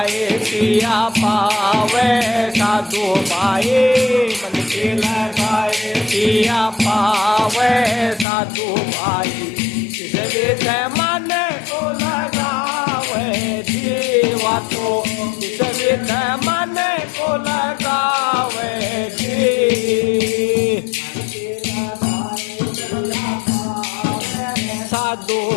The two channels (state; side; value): drops out; right; at 8.2 s